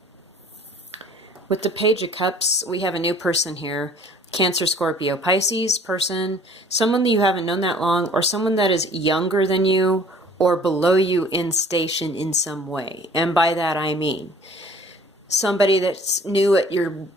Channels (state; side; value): normal; both; correlation 0.52